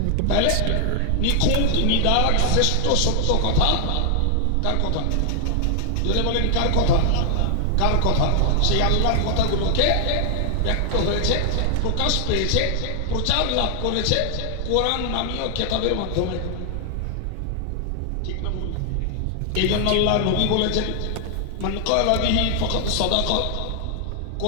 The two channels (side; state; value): both; different; correlation 0.00